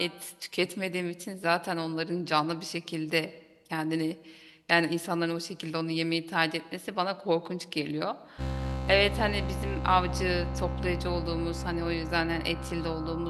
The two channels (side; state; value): both; identical; correlation 1.00